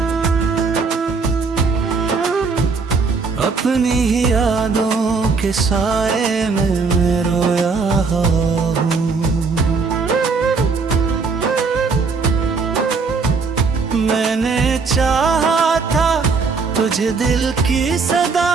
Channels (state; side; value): quieter; left; 4.6 dB